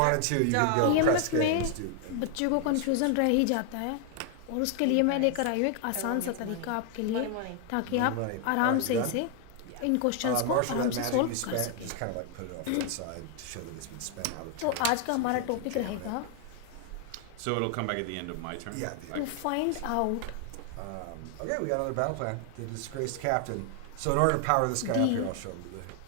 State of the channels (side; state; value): both; different; correlation 0.00